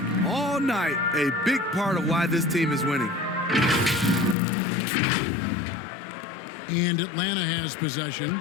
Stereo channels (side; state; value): right; drops out; at 4.4 s